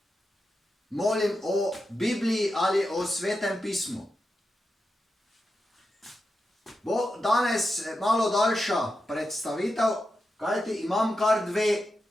molim o Bibliji ali o Svetem pismu. Bo danes malo daljša predstavitev, kajti imam kar dve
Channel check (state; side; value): normal; both; correlation 0.89